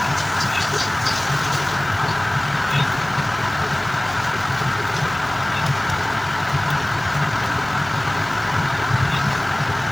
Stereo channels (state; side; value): noise; left; hum, 22 dB below the sound